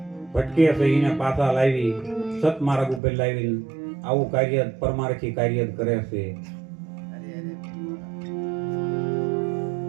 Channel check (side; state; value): left; drops out; at 3.0 s